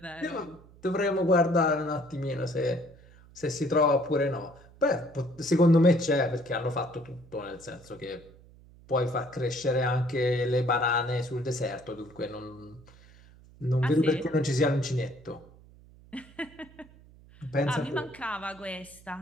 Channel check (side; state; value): right; noise; hum, 24 dB below the sound